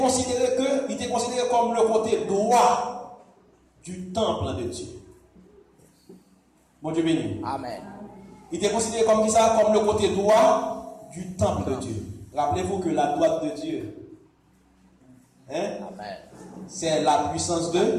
comme le côté droit du temple de Dieu. Bon Dieu béni. Amen. Il était considéré comme ça, comme le côté droit du temple de Dieu. Rappelez-vous que la droite de Dieu, c'est la puissance de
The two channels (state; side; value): identical; both; correlation 1.00